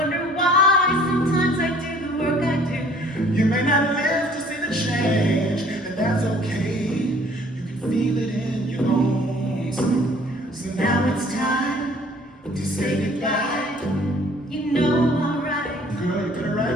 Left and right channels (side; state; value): both; normal; correlation 0.55